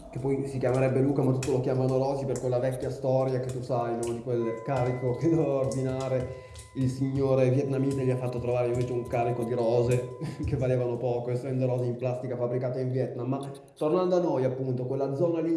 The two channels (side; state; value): both; identical; correlation 1.00